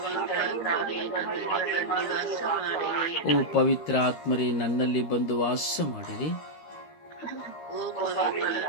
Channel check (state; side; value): late; right; 13 ms